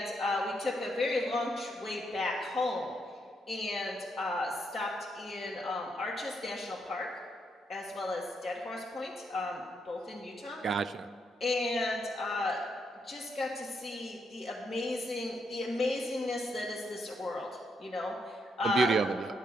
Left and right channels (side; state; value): both; normal; correlation 0.78